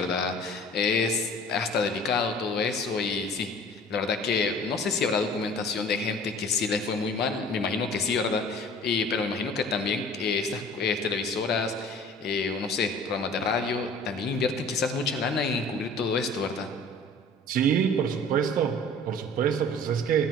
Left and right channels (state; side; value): normal; both; correlation 0.46